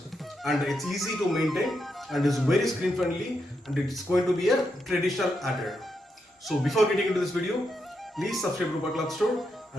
and it's easy to maintain and is very screen friendly and it's going to be a traditional attire. So before getting into this video, please subscribe to Rupa Cloth Store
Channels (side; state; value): both; normal; correlation 0.83